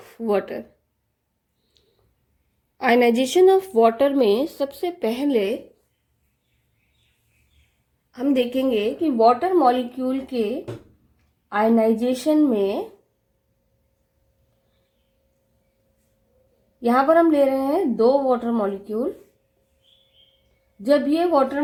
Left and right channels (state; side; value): identical; both; correlation 1.00